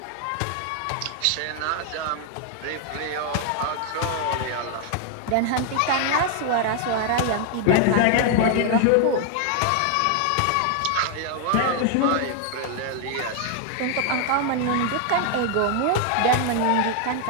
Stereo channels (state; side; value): different; both; correlation 0.00